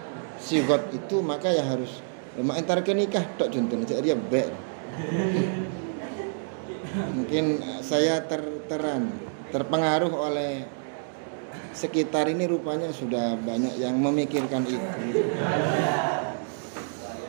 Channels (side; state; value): left; silent; digital silence